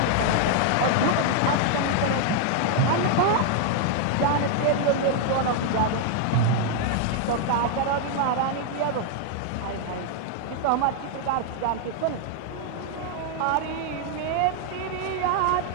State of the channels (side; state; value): both; different; correlation 0.00